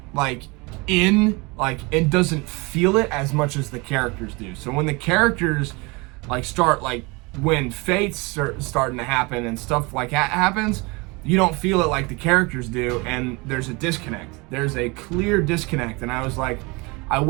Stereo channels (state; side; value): quieter; left; 26.7 dB